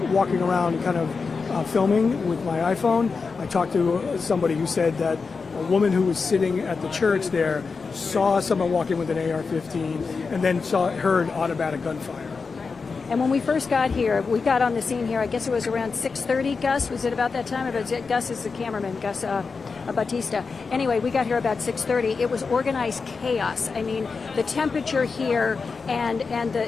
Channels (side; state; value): right; quieter; 4.8 dB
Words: walking around kind of filming with my iPhone, I talked to somebody who said that a woman who was sitting at the church there saw someone walking with an AR-15 and then heard automatic gunfire. And when we first got here, we got on the scene here, I guess it was around 6:30, Gus. Was it about that time? Gus is the cameraman, Gus Batista. Anyway, we got here about 6:30. It was organized chaos. I mean, the temperature here and